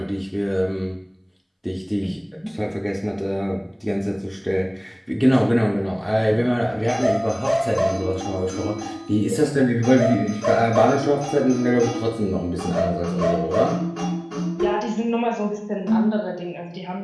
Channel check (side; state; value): both; identical; correlation 1.00